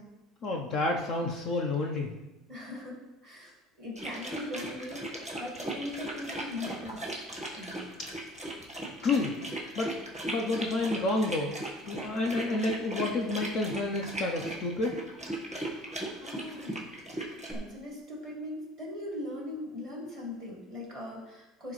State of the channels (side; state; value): both; normal; correlation 0.48